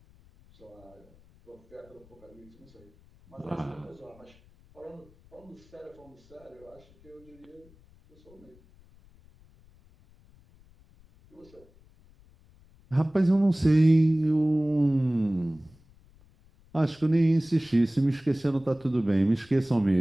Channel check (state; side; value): noise; left; rumble, 28 dB below the sound